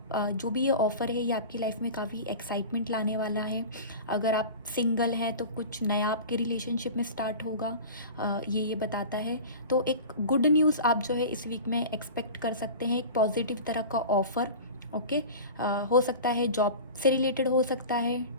ये ऑफ़र है ये आपकी लाइफ में काफ़ी एक्साइटमेंट लाने वाला है। अगर आप सिंगल हैं तो कुछ नया आपके रिलेशनशिप में स्टार्ट होगा, ये बताता है। तो एक गुड न्यूज़ आप जो है इस वीक में एक्सपेक्ट कर सकते हैं, एक पॉजिटिव तरह का ऑफ़र। ओके, हो सकता है जॉब से रिलेटेड हो सकता है,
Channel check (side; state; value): both; inverted; correlation -0.34